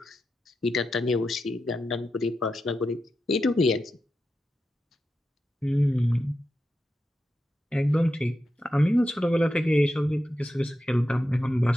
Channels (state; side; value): normal; both; correlation 0.89